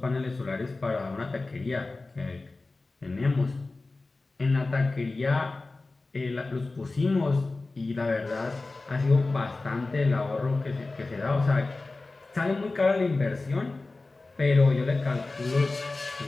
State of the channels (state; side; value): quieter; right; 3.4 dB